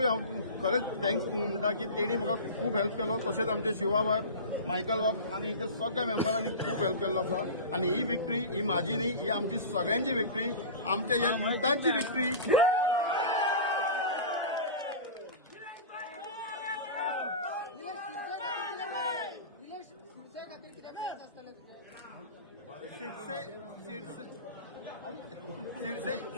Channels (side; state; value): both; inverted; correlation -0.30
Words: हांव खरेंच थँक्स म्हणटा की तेणी म्हाका खूब हेल्प केलो. तशेंच आमचे शिवा बाब मायकल बाब आनी हिच्या सगळ्या मेंबरांनी खूब हेल्प केल्लो आसा. आनी ही विक्ट्री ही म्हाजी न्ही, ही आमची सगळ्यांची विक्ट्री, आमच्या ह्या युथांची विक्ट्री.